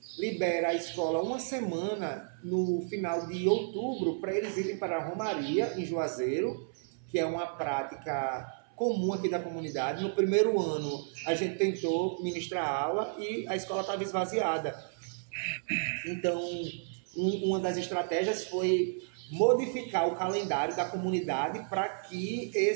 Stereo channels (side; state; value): left; silent; 56 dB below the other